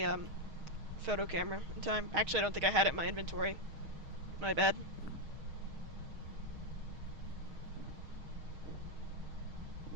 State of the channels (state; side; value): late; left; 6.4 ms